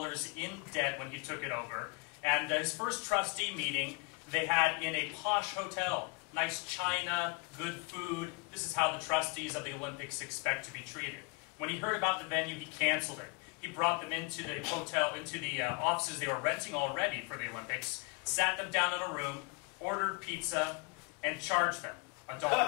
in debt when he took it over. And his first trustee meeting they had in a posh hotel. Nice china, good food. This is how the trustees of the Olympics expect to be treated. When he heard about the venue, he canceled it. He brought them into the hotel, into the offices they were renting already for the Olympics, sat them down in a room, ordered pizza, and charged them $1 per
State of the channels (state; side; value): quieter; right; 31.4 dB